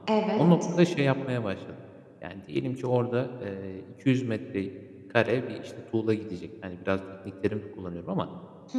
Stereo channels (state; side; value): identical; both; correlation 1.00